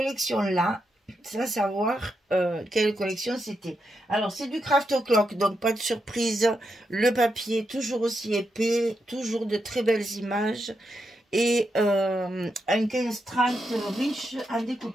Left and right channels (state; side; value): normal; both; correlation 0.84